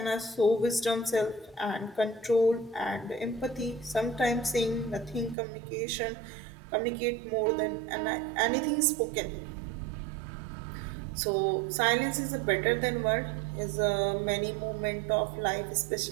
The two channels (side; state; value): left; drops out; at 5.4 s